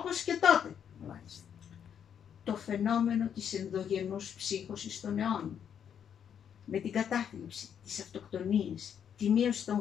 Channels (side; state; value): right; quieter; 8.4 dB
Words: και τότε. Μάλιστα. Το φαινόμενο της ενδογενούς ψύχωσης των αιώνων. Με την κατάθλιψη, τις αυτοκτονίες, τη μείωση